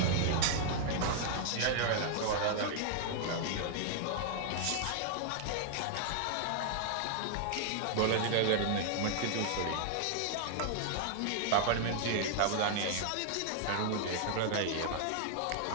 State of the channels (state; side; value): different; both; correlation 0.00